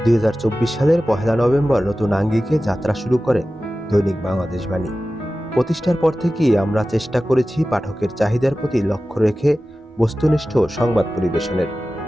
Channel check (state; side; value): normal; both; correlation 0.95